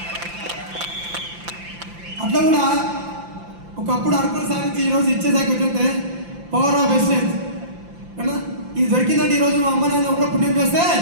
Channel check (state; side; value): late; left; 5.8 ms